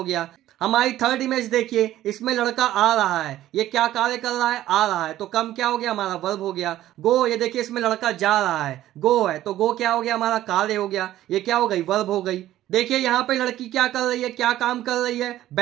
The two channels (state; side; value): quieter; left; 13.8 dB